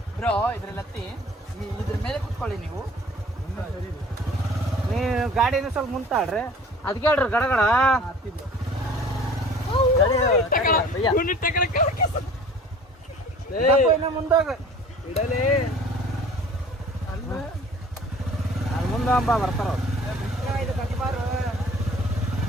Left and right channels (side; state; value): both; normal; correlation 0.48